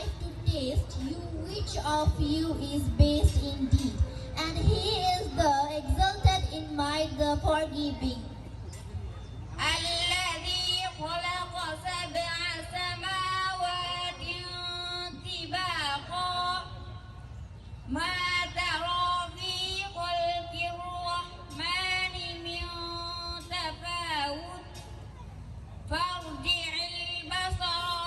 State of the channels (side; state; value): both; identical; correlation 1.00